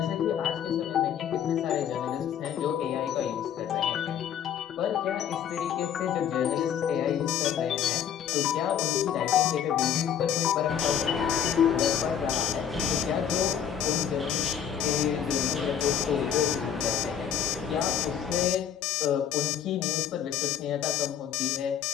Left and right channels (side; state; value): right; quieter; 8.9 dB